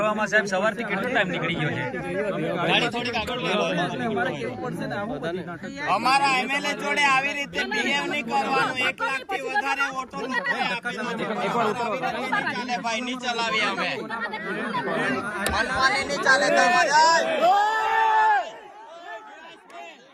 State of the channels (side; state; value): both; identical; correlation 1.00